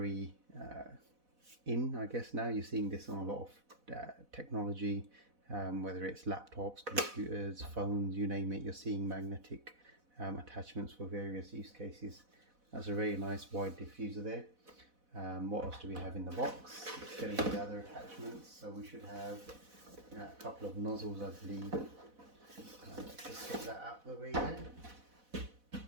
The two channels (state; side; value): late; left; 4.1 ms